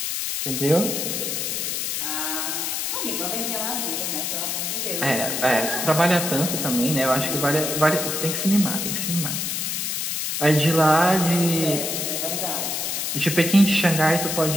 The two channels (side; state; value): left; noise; hiss, 1 dB below the sound